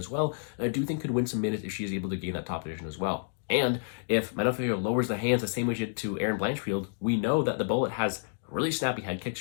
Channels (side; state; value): right; silent; digital silence